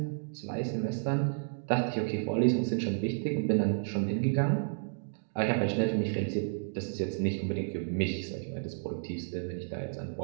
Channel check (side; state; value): left; silent; digital silence